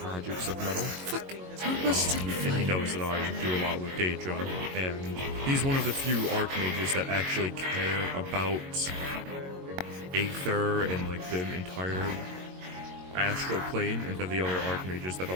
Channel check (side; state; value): left; late; 22 ms